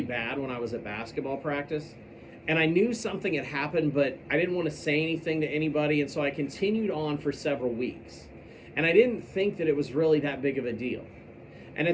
when I was at basketball practice. And I knew something had happened, but I didn't want to say anything to anybody, and so I continued on for several weeks. And I didn't think that it was really that big of a deal. And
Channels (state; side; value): identical; both; correlation 1.00